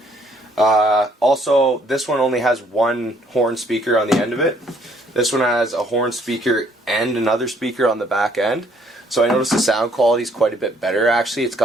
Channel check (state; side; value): normal; both; correlation 0.65